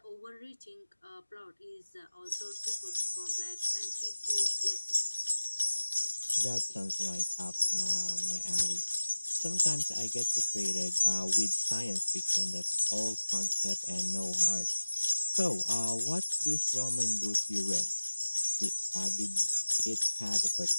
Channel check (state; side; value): inverted; both; correlation -1.00